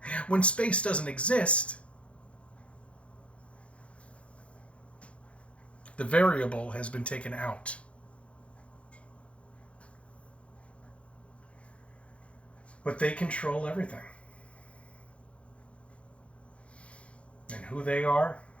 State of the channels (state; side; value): late; right; 0.061 ms